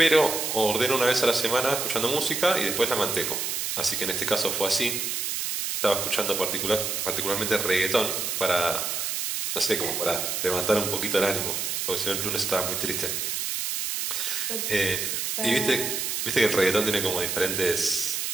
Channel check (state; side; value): noise; right; hiss, 1 dB below the sound